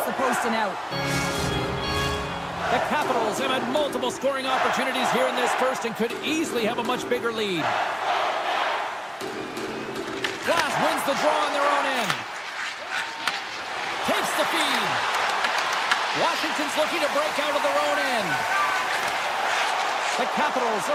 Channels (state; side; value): identical; both; correlation 1.00